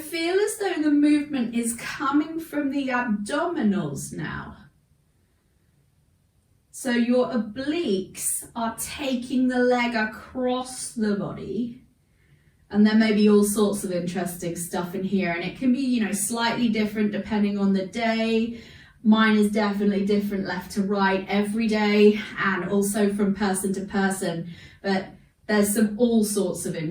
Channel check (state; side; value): identical; both; correlation 1.00